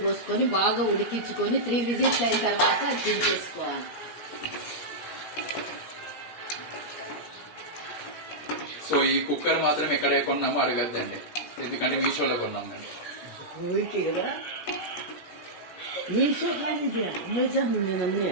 పోసుకొని బాగా ఉడికించుకొని 3 విజిల్స్ అయిన తర్వాత దించేసుకోవాలి. సో ఈ కుక్కర్ మాత్రం ఎక్కడ కొన్నామో అడగద్దండి, ఎందుకంటే మీషోలో కొన్నాం మేము.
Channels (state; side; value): late; right; 17 ms